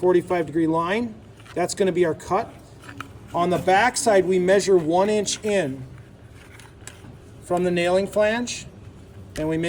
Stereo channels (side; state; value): both; identical; correlation 1.00